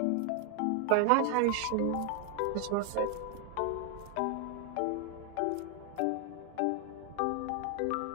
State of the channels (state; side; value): different; both; correlation 0.00